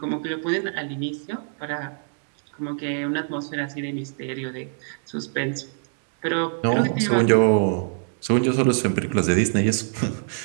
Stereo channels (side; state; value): left; silent; 62 dB below the other